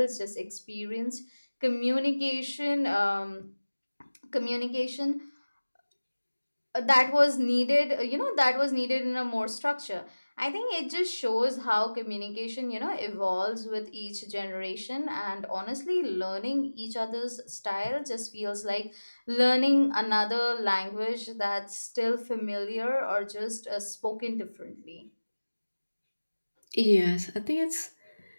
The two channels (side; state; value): both; inverted; correlation -1.00